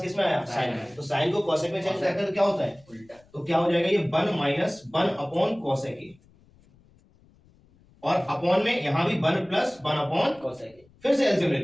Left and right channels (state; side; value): noise; left; rumble, 30 dB below the sound